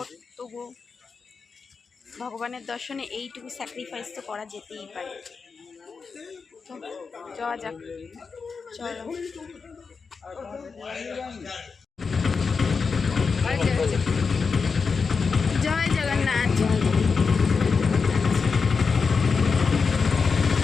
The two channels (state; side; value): quieter; right; 5.1 dB